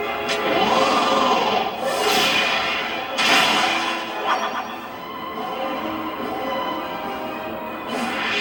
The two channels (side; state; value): both; identical; correlation 1.00